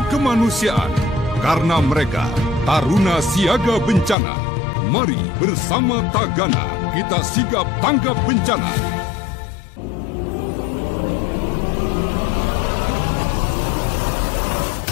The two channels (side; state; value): right; drops out; at 4.2 s